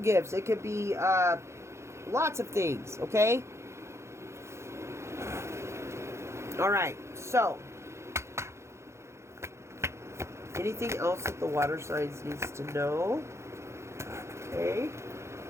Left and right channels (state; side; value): late; left; 0.13 ms